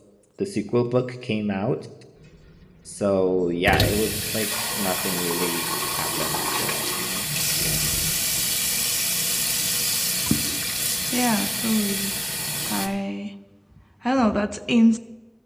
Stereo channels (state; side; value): identical; both; correlation 1.00